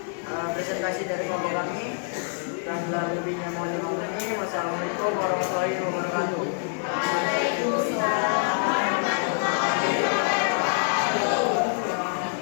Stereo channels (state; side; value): silent; right; 55 dB below the other